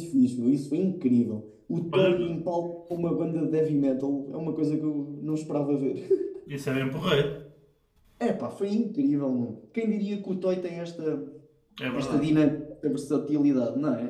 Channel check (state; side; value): identical; both; correlation 1.00